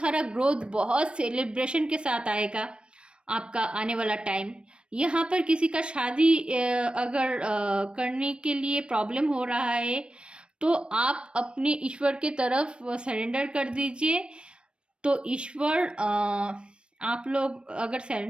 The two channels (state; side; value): late; left; 0.057 ms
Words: ग्रोथ, बहुत सेलिब्रेशन के साथ आएगा आपका आने वाला टाइम। यहाँ पर किसी का शादी अगर करने के लिए प्रॉब्लम हो रहा है, तो आप अपने ईश्वर के तरफ सरेंडर कर दीजिए। तो ईश्वर आप लोग अगर